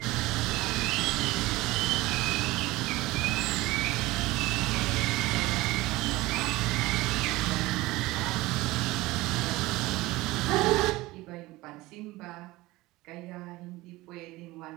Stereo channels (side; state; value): left; quieter; 19.7 dB